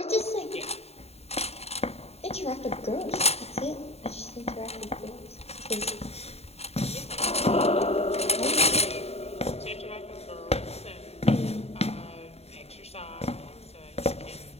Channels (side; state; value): right; late; 0.30 ms